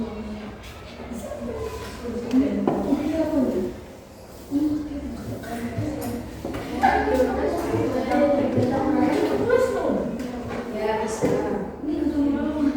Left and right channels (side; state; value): both; identical; correlation 1.00